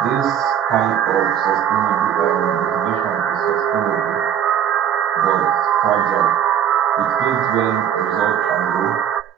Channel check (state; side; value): quieter; left; 9.4 dB